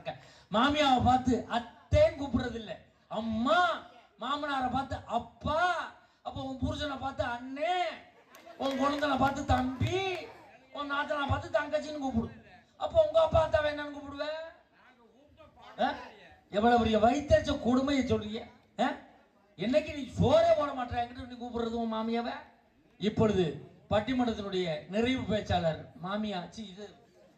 மாமியாவை பார்த்து அத்தேன்னு கூப்பிடுறது இல்ல, அம்மா. மாமனாரை பார்த்து அப்பா. அப்போ உன் புருஷனை பார்த்து அண்ணே, உன் குழந்தைனை பார்த்து தம்பி, உன் நாத்தனை பார்த்து தங்கச்சின்னு கூப்பிடு. அப்போ உங்க அப்பா அத்தாவை என்னன்னு கூப்பிடுவேன்? எவ்வளவு பெரிய வயிற்றுச்ச கொடுமையை சொல்றீங்க. என்னைக்கு நீ சோறே போட மாட்டேன் என்கிட்ட நீ கூப்பிடுறது உன் மாமியாவை. இப்பொழுது பட்டிமன்றத்தினுடைய நிறைவு பேச்சாளர் மாமியா இது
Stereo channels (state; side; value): identical; both; correlation 1.00